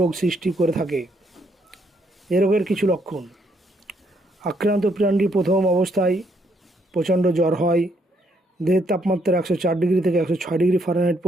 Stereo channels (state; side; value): normal; both; correlation 0.72